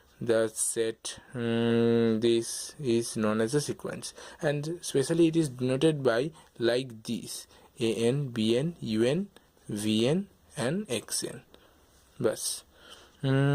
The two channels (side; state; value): both; identical; correlation 1.00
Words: the set this is known as a sequence, and especially it is denoted by like this: an, bn, un, vn and xn. Bas.